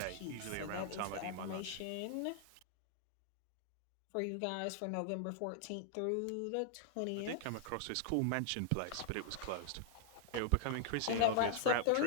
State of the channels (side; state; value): both; different; correlation -0.01